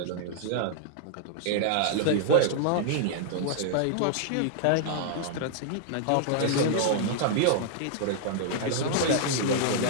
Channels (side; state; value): both; different; correlation -0.01